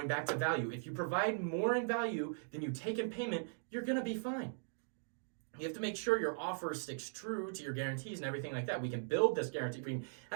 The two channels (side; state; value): left; silent; digital silence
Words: back to value. If you provide more in value than you take in payment, you're going to be fine. You have to make sure your offer sticks true to your guarantees and everything like that. We can build this guarantee. We can